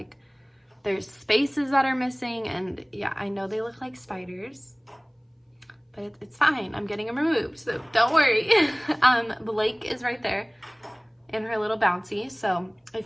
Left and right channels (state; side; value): identical; both; correlation 1.00